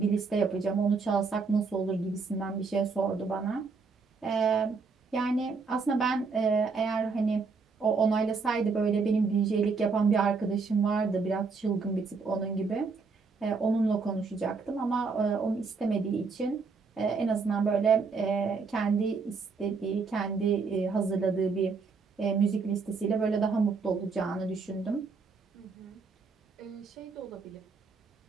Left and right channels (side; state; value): left; quieter; 4.7 dB